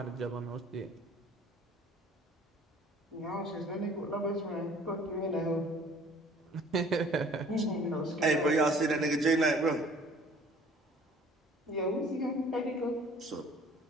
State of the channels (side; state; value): both; normal; correlation 0.52